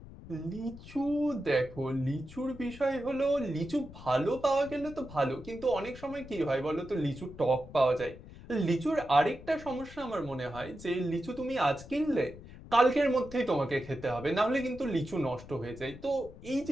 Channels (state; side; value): noise; left; rumble, 16 dB below the sound